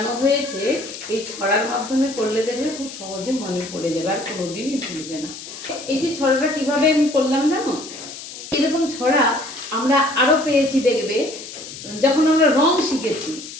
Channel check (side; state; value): left; noise; hiss, 12 dB below the sound